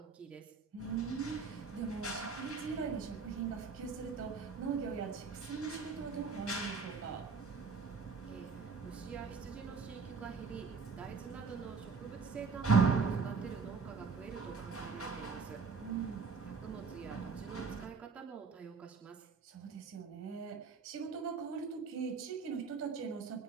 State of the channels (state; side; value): quieter; left; 5.1 dB